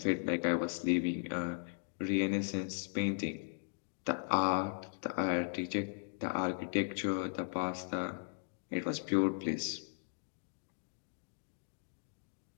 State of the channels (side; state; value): right; silent; digital silence